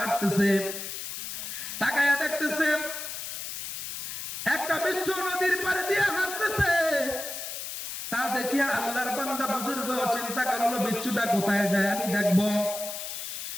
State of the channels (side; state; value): left; noise; hiss, 7 dB below the sound